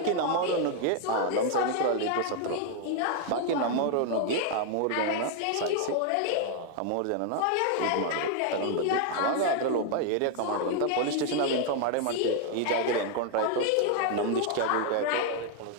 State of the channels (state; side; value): different; both; correlation 0.00